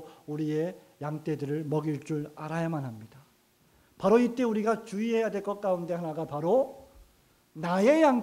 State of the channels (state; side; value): identical; both; correlation 1.00